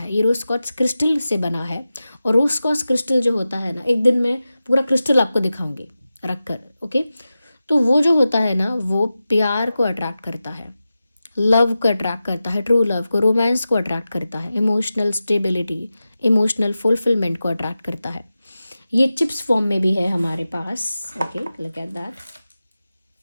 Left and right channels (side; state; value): both; inverted; correlation -0.94